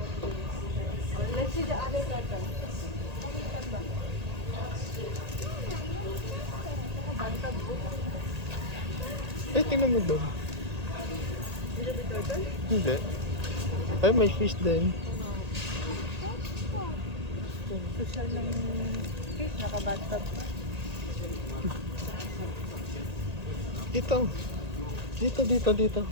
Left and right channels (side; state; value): left; late; 1.8 ms